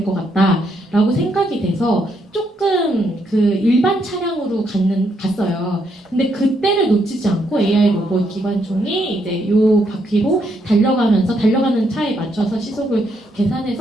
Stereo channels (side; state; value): both; normal; correlation 0.76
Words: 것 같다라고 생각이 돼서 조금 그 일반 차량으로 갔어요. 근데 그때를 놓치지 않고 AI 로봇 기관총이 이제 요 바퀴로 달려가면서 달려가는 차에 맞춰서 시속을